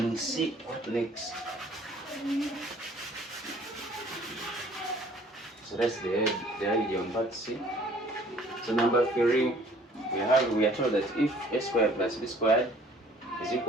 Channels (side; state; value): both; normal; correlation 0.55